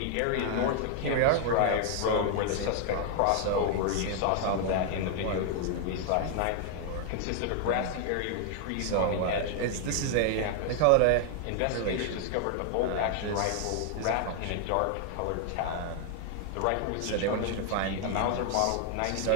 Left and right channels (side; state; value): both; different; correlation 0.00